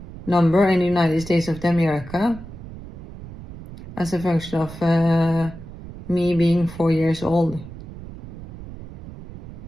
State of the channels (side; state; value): right; noise; rumble, 14 dB below the sound